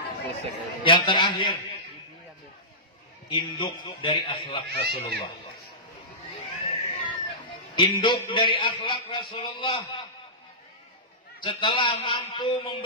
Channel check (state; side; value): normal; both; correlation -0.19